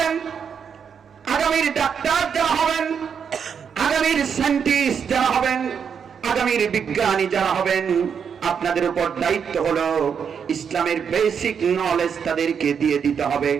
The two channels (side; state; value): left; quieter; 7.0 dB